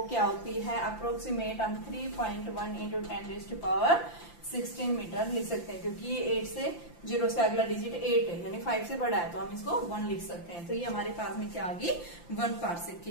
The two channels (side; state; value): right; late; 5.8 ms